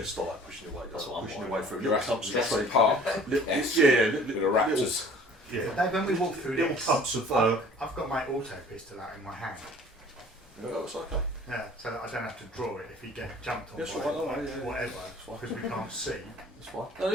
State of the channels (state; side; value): normal; both; correlation 0.50